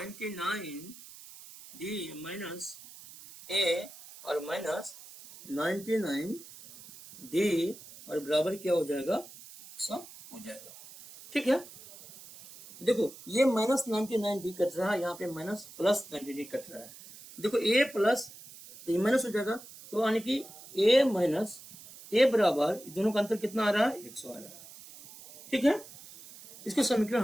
डी माइनस ए और माइनस 99 डी और बराबर क्या हो जाएगा, 100 हो जाएगा, ठीक है। देखो ये माइनस 99 डी कट रहा है, यहाँ पे माइनस प्लस 90 डी कट रहा है। देखो ए प्लस तो ये माइनस हो जाएगा, तो यानी कि ए माइनस ए बराबर दोनों का अंतर कितना आ रहा है, 100 आ रहा है, ठीक है। इसके समीकरण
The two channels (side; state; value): right; noise; hiss, 18 dB below the sound